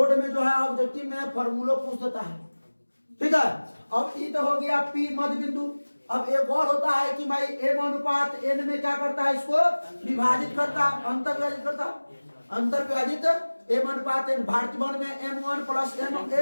में जो है ऑब्जेक्टिव में फॉर्मूला पूछ देता है, ठीक है। अब ये तो हो गया P मध्य बिंदु। अब एक और होता है कि भाई m अनुपात n में क्या करता है, इसको विभाजित करता, अंतर विभाजित करता, अंतर विभाजित m अनुपात n। भारतीय वन में m1 प्लस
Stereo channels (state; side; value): inverted; both; correlation -1.00